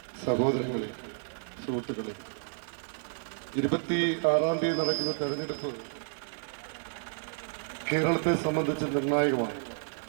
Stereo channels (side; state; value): left; silent; digital silence